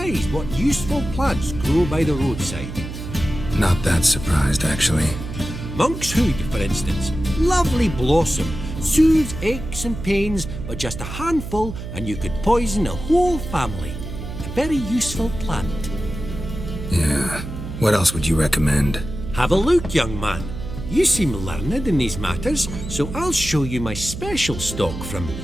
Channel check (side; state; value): right; noise; hum, 9 dB below the sound